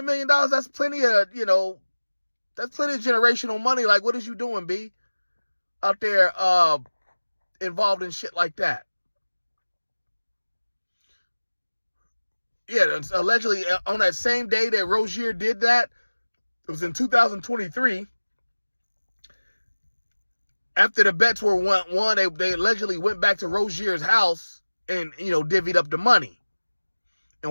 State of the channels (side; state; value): both; inverted; correlation -1.00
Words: million, that's plenty of, that's plenty of generational money. Like, what is you doing, B? Out there involved in shit like that. Yeah, allegedly on that same day that Rozier did that, it was in 2023. After the bets were won, they allegedly went back to Rozier's house and, divvied up the money